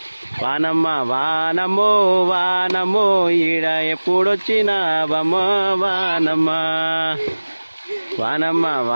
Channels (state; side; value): inverted; both; correlation -1.00